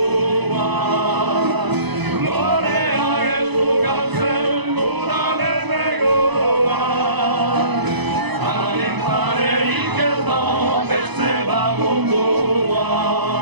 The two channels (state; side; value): late; left; 1.0 ms